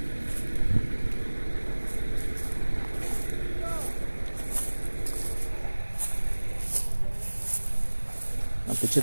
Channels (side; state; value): both; inverted; correlation -1.00